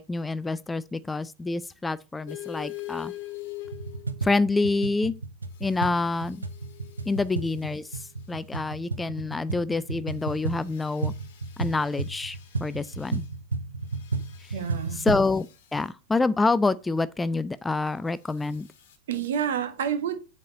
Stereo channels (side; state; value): both; normal; correlation 0.64